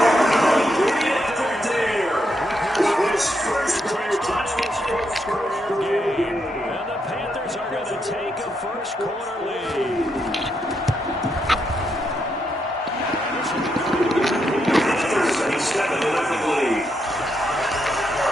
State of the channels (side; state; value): both; normal; correlation 0.80